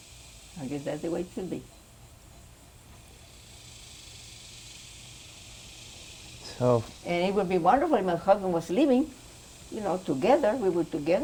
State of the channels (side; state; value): both; identical; correlation 1.00